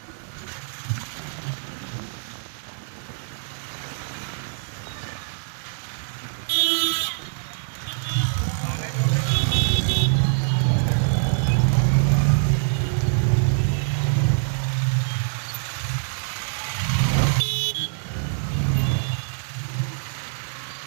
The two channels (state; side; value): silent; left; 61 dB below the other